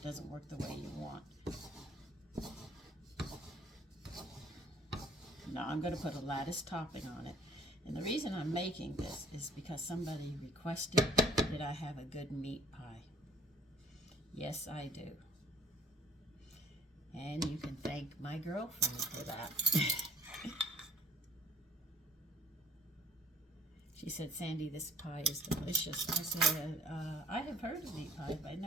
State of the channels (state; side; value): normal; both; correlation 0.53